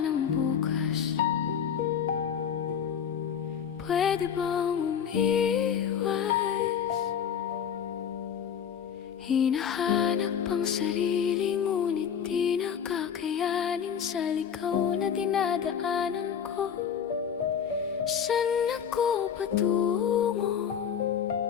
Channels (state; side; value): quieter; right; 8.0 dB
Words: nang bukas. Pwede bang umiwas? Hinahanap ang sarili, ngunit di nakakayanin sa ligaw na dinadaanan ko. Saan ako patungo?